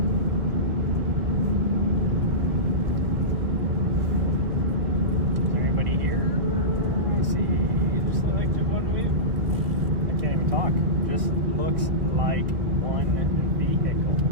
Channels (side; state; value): left; late; 2.0 ms